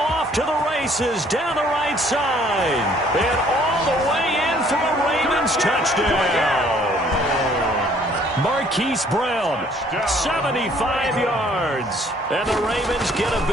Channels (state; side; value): normal; both; correlation 0.60